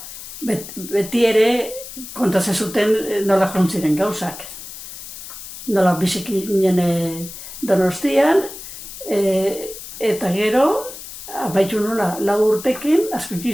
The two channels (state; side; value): noise; left; hiss, 12 dB below the sound